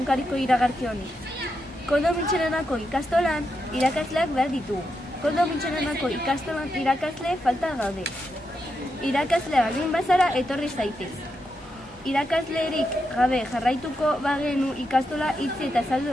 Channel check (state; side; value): normal; both; correlation 0.85